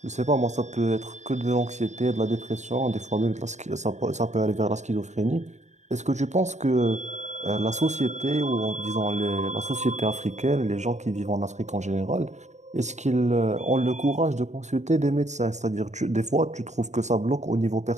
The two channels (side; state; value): left; late; 0.34 ms